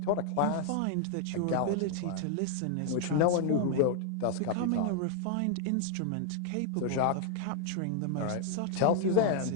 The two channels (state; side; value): different; both; correlation 0.00